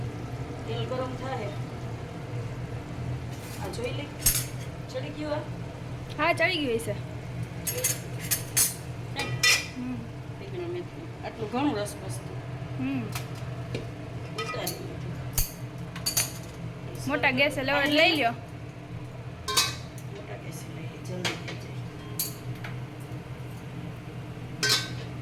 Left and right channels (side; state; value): both; identical; correlation 1.00